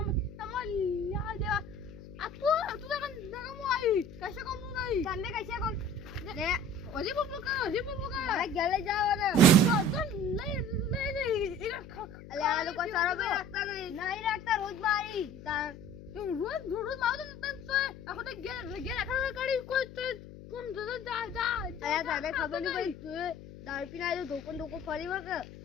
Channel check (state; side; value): noise; left; hum, 15 dB below the sound